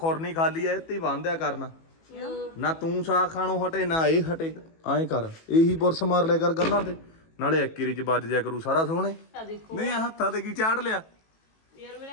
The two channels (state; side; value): late; right; 18 ms